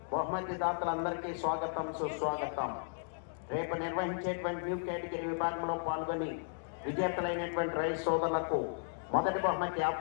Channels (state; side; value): silent; right; digital silence